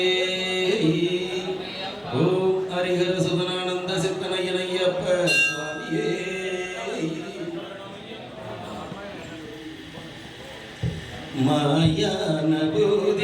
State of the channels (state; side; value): identical; both; correlation 1.00